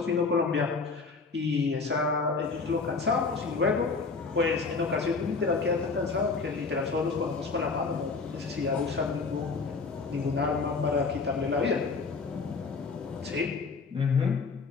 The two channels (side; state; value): right; quieter; 4.5 dB